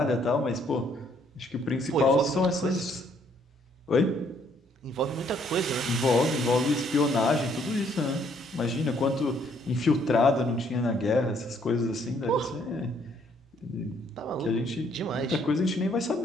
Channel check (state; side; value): normal; both; correlation 0.67